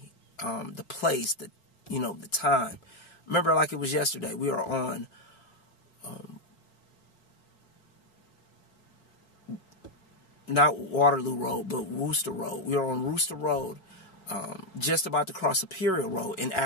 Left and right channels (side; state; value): right; late; 5.0 ms